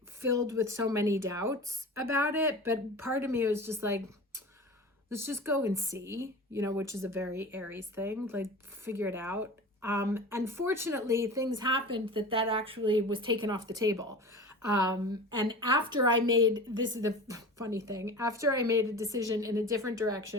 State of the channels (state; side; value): normal; both; correlation 0.35